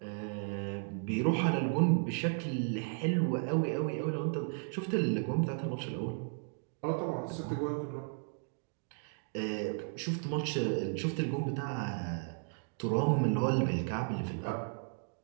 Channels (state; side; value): silent; left; 55 dB below the other